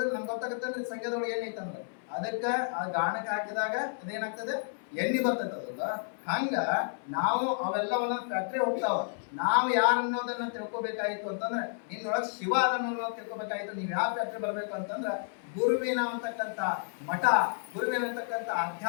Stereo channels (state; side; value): silent; right; 57 dB below the other